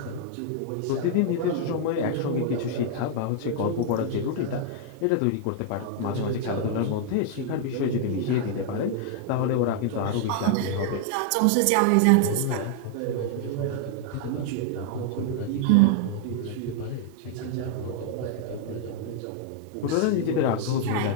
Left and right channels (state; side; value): different; both; correlation -0.01